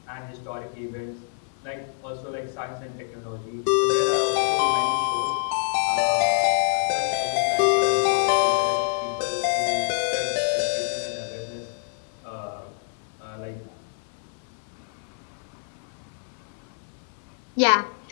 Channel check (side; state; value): right; silent; 61 dB below the other